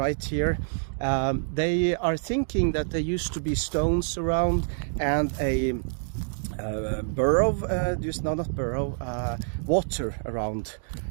here, they are thinking that there used to be stones around and a water around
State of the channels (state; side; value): silent; left; digital silence